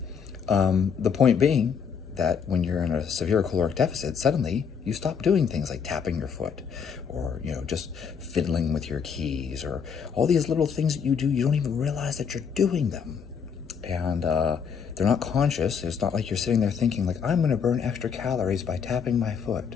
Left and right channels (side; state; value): right; quieter; 6.7 dB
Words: The point being that when you're in a severe caloric deficit, suddenly you stop doing things like tapping your foot, or just fiddling with your keys, or all these little things that you do. You don't even realize that you're doing them, and they're not conscious. It's not like you're sitting there thinking like, I'm going to burn extra calories by tapping my foot.